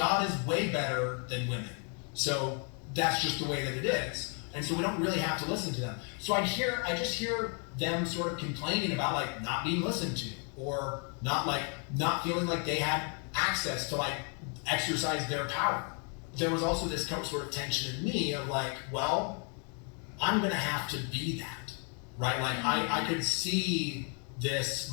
is way better than women. So that's just the way that it is. And so we don't really have to listen to them. So I just hear them sort of complaining about like not being listened to, or not feeling like they had access to like exercise their power. There was also this sort of tension in me of like, well, I'm gonna have to be that, right? Like I could see this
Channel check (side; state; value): right; quieter; 39.3 dB